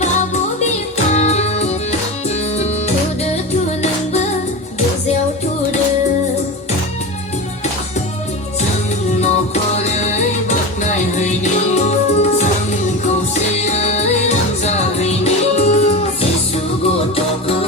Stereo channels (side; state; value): both; normal; correlation 0.24